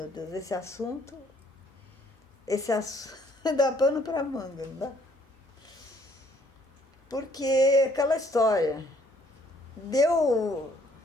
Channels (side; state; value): both; normal; correlation 0.63